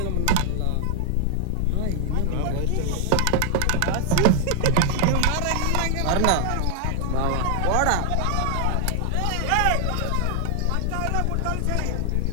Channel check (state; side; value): different; both; correlation 0.00